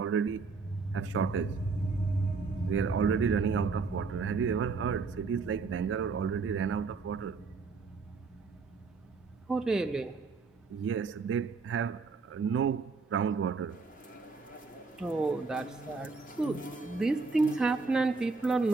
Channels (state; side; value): quieter; left; 4.5 dB